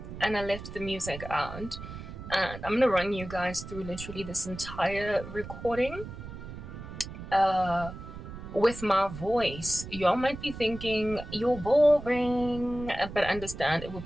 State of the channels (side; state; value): right; noise; rumble, 11 dB below the sound